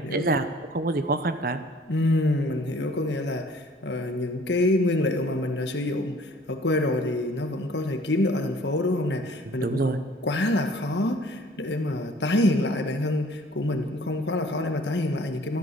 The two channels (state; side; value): normal; both; correlation 0.53